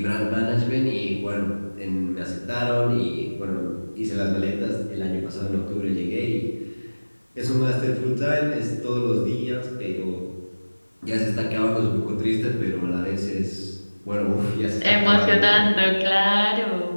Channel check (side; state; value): both; inverted; correlation -1.00